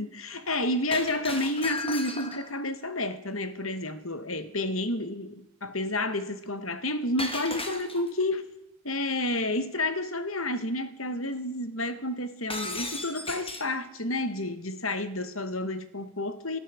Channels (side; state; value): both; normal; correlation -0.02